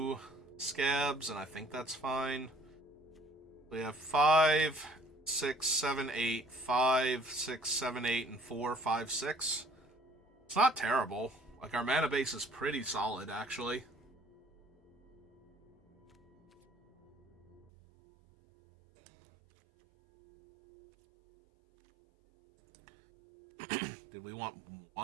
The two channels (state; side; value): drops out; left; at 17.7 s